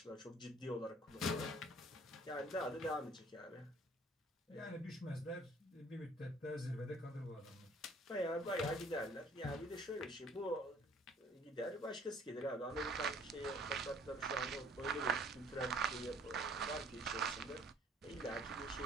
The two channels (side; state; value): both; normal; correlation 0.56